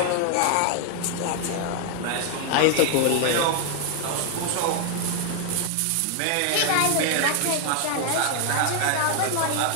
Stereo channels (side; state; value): both; different; correlation 0.00